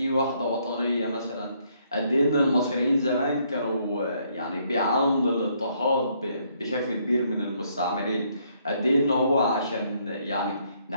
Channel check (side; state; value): both; inverted; correlation -0.70